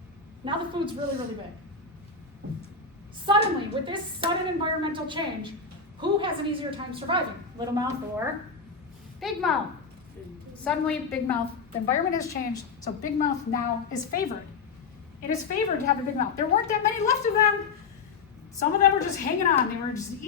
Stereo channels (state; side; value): quieter; right; 5.0 dB